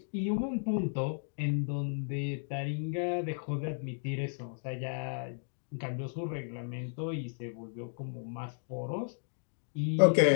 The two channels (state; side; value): silent; right; digital silence